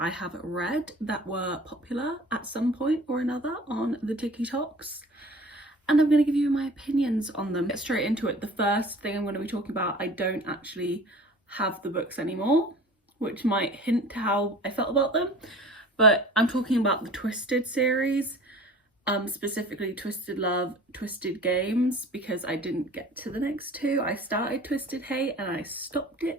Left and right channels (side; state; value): both; normal; correlation 0.44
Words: I have read that were popular at some point or another on the TikToks, and I'm going to give you my opinions on them. Get straight into it. The first thing I'm going to be talking about, I don't actually have the books anymore, which might hint to how I felt about them, but I'm talking about the Twisted series, specifically Twisted Love, Twisted Games, because I didn't get to the next two. I started Twisted Hate and I stopped